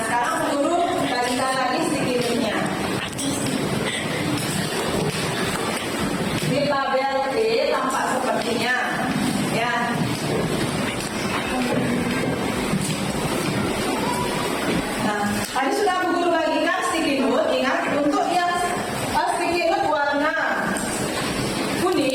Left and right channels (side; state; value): both; identical; correlation 1.00